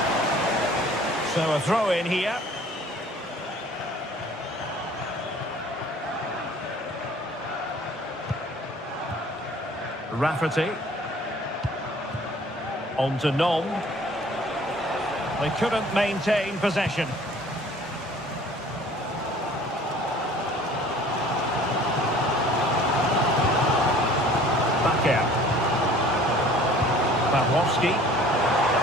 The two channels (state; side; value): normal; both; correlation 0.51